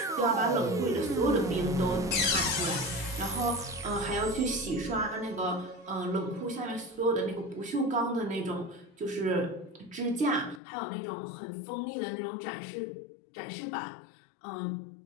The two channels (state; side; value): drops out; right; at 10.6 s